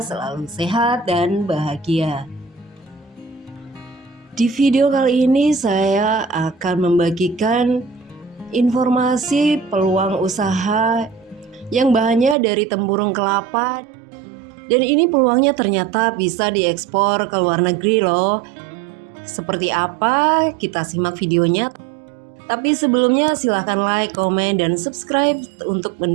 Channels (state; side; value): drops out; left; at 12.4 s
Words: selalu sehat dan bahagia. Di video kali ini saya akan membagikan informasi peluang usaha yang bahannya dari tempurung kelapa. Dan ini peluangnya ternyata bisa diekspor ke luar negeri loh. Seperti apa? Kita simak videonya. Tapi sebelumnya silahkan like, komen, dan subscribe untuk